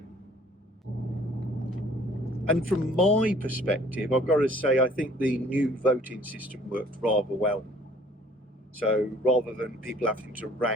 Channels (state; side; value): normal; both; correlation 0.55